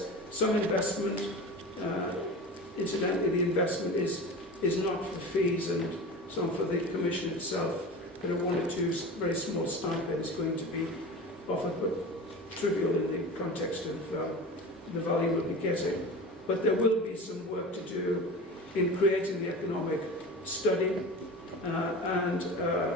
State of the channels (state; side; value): normal; both; correlation 0.32